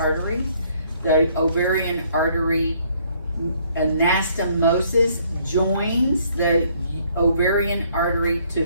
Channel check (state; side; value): inverted; both; correlation -0.65